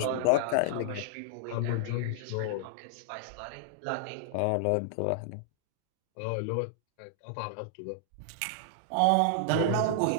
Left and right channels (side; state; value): both; different; correlation -0.01